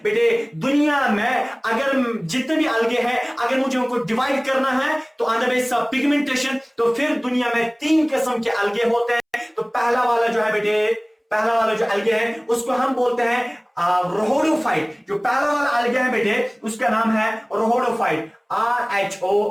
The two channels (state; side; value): identical; both; correlation 1.00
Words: बेटे दुनिया में अगर जितने भी एल्गे हैं, अगर मुझे उनको डिवाइड करना है तो on the base of pigmentation, तो फिर दुनिया में 3 किस्म के एल्गे होते हैं। तो पहला वाला जो है बेटे, पहला वाला जो एल्गे है उसको हम बोलते हैं रोहोडोफाइट। जो पहला वाला एल्गे है बेटे उसका नाम है रोहोडोफाइट,